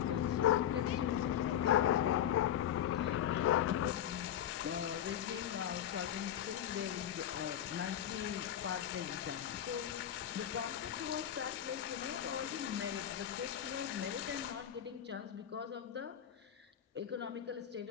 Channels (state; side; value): quieter; right; 10.4 dB